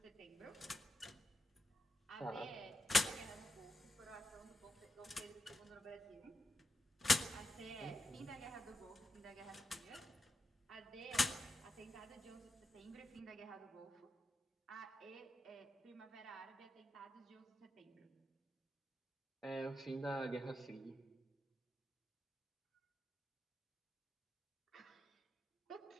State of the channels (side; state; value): both; normal; correlation 0.87